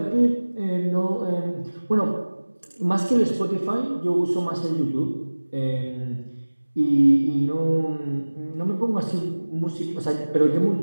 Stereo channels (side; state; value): both; inverted; correlation -1.00